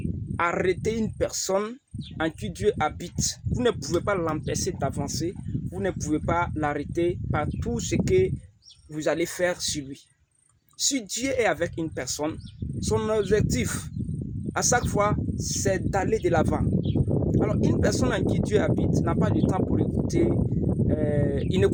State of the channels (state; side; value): identical; both; correlation 1.00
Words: arrêter une personne en qui Dieu habite. Vous ne pouvez pas l'empêcher d'avancer. Vous ne pouvez pas l'arrêter par tout ce que vous allez faire sur lui. Si Dieu est avec une personne, son objectif, à chaque fois, c'est d'aller de l'avant. Alors, une personne en qui Dieu habite n'a pas de temps pour écouter. Il